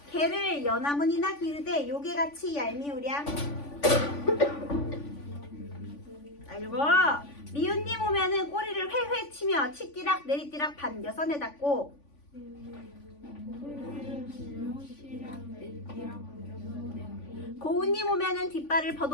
개를 연함은 이나기르되 요게같이 얄미우랴. 자, 읽어. 미운님 오면은 꼬리를 회회 치며 치띠락 내리띠락 반겨서 내닫고 고운님 오면은 뒷발을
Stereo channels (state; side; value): late; right; 3.5 ms